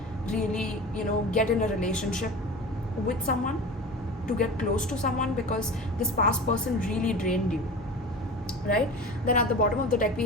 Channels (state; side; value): normal; both; correlation 0.33